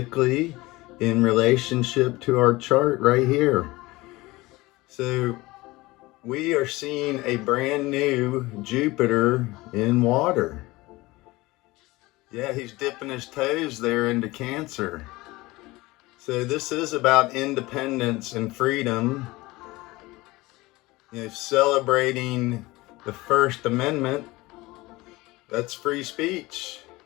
in relationship to our chart right here. So we are seeing a brand new Jupiter in water. Yeah, he's dipping his toes there into Cancer. So this is about independence and freedom, celebrating the First Amendment. That's free speech.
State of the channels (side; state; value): right; quieter; 20.7 dB